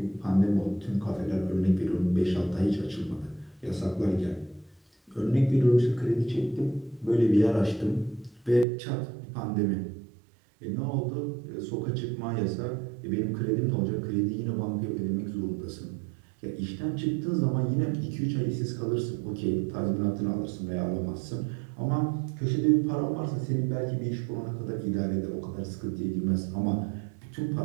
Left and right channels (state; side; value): drops out; left; at 8.7 s